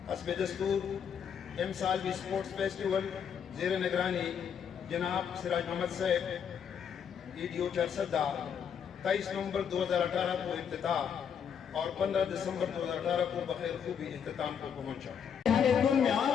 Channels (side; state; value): right; quieter; 7.7 dB